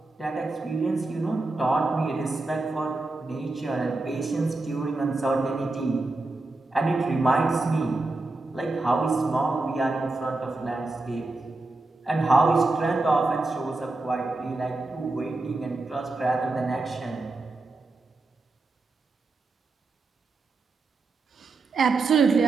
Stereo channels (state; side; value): quieter; left; 3.3 dB